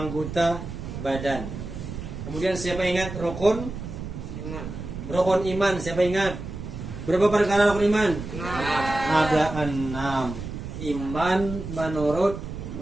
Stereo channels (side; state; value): right; noise; rumble, 8 dB below the sound